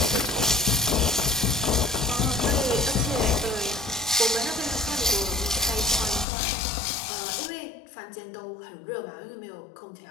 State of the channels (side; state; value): right; drops out; at 6.2 s